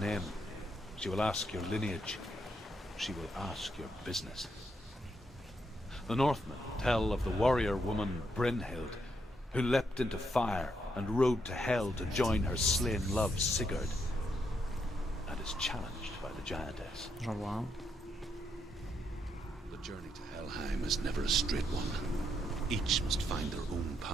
She will ask your lineage. She will ask your business. The Northmen tell of the warrior woman Brynhild, who leapt into fire and rode to hell to join her slain love Sigurd, and is challenged by the giantess. J'en vois un. The journey to Helheim is never a straight one. Each must find their own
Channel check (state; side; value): normal; both; correlation 0.78